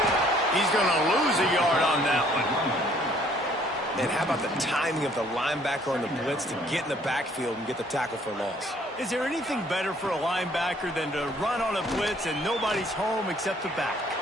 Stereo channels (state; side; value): normal; both; correlation 0.61